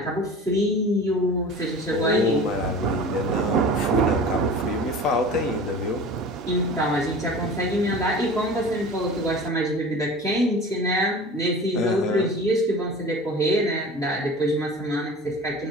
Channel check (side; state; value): both; normal; correlation 0.38